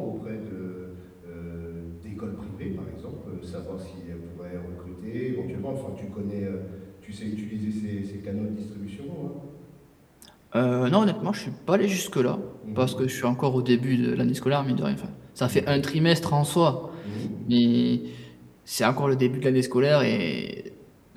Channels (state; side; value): identical; both; correlation 1.00